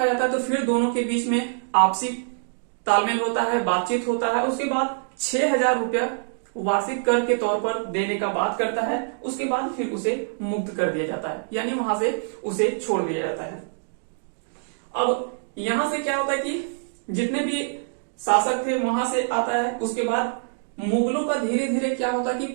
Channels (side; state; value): left; silent; digital silence